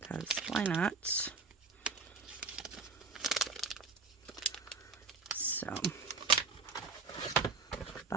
why not? So,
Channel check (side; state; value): left; quieter; 4.4 dB